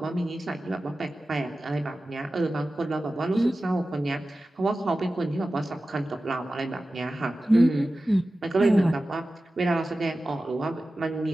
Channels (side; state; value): both; normal; correlation 0.95